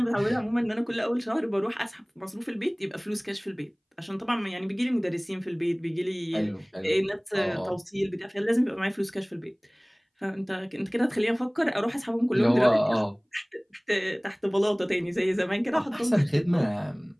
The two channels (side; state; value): both; identical; correlation 1.00